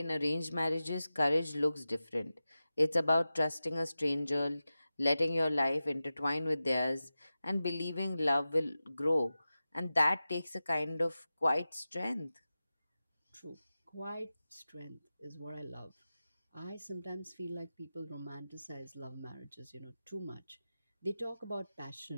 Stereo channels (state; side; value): inverted; both; correlation -0.94